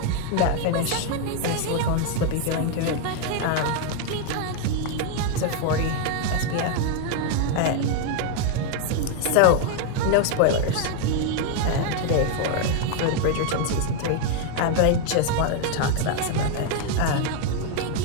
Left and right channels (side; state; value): both; different; correlation 0.00